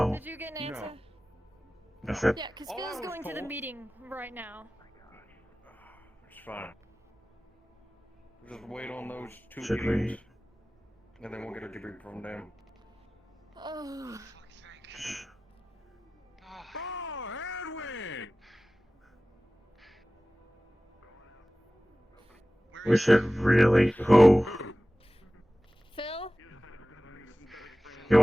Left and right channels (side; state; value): both; normal; correlation 0.97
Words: Did you get an answer? I said. Yeah, because Phil's going to the meeting right now. It's fine. Just wait on those two Should we? meetings, and then we'll get a debrief from them. Oh. Oh, Edwin! We should really. Who? Phil? He